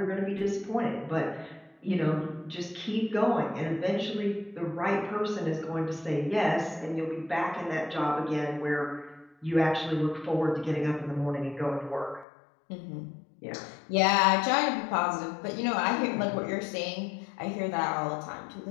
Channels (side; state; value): right; drops out; at 12.2 s